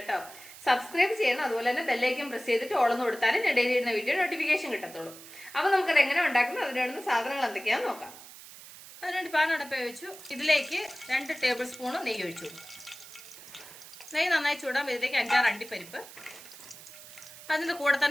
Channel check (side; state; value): right; noise; hiss, 17 dB below the sound